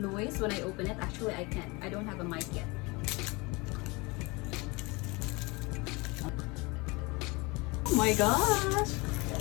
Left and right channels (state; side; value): quieter; right; 26.0 dB